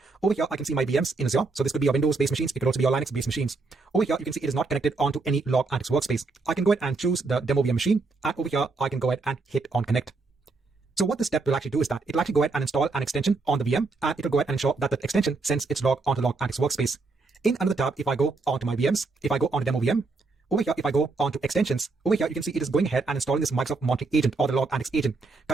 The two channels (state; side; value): quieter; left; 3.8 dB